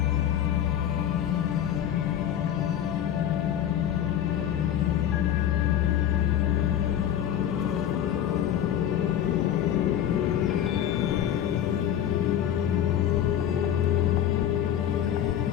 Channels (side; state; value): right; quieter; 10.5 dB